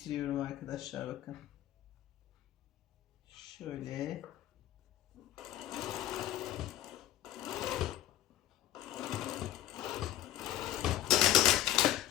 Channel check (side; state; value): right; quieter; 13.4 dB